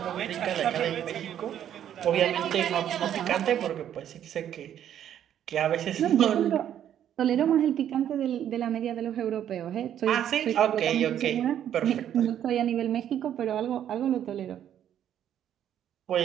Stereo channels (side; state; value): left; quieter; 10.3 dB